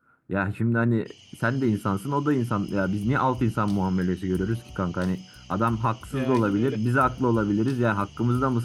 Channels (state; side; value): identical; both; correlation 1.00